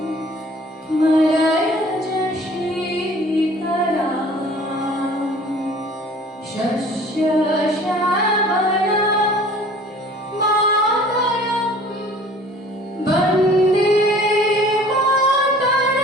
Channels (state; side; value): normal; both; correlation 0.49